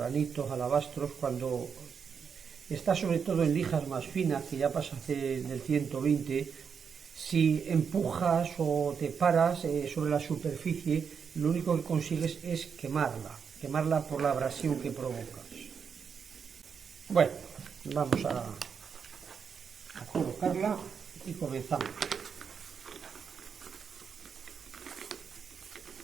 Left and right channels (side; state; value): left; quieter; 6.5 dB